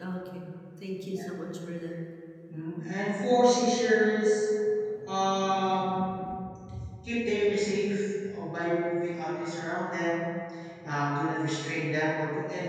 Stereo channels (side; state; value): both; identical; correlation 1.00